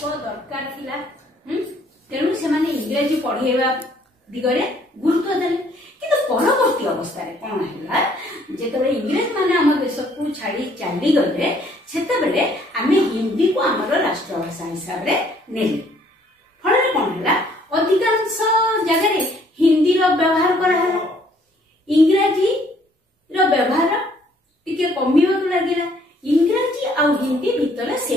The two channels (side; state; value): both; normal; correlation 0.63